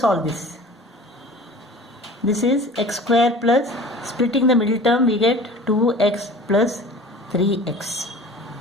this. This is x squared plus, splitting the middle term we get 2x plus 3x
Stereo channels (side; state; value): both; normal; correlation 0.42